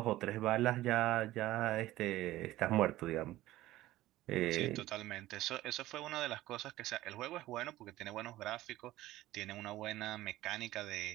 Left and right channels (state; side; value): quieter; left; 16.1 dB